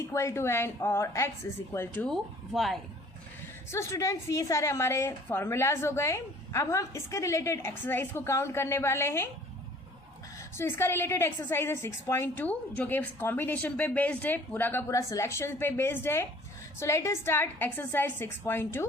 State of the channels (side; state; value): both; normal; correlation 0.52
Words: to n or x is equal to y। So students, ये सारे हमारे formulas हो गए। अब हम इसके related exercise को काउंट करने वाले हैं। सो इसका रिलेटेड एक्सरसाइज है 6.2 जो कि कॉम्बिनेशन पे बेस्ड है, पूरा का पूरा सिलेक्शन पे बेस्ड है. So let us start exercise